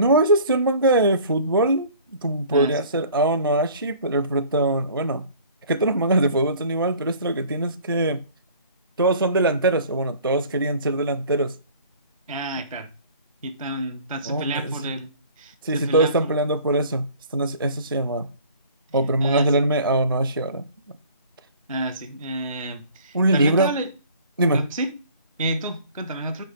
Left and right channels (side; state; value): both; inverted; correlation -0.50